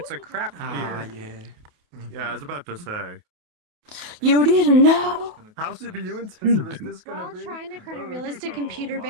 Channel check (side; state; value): left; late; 28 ms